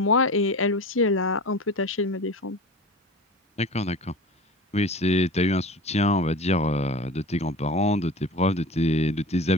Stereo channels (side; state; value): both; normal; correlation 0.34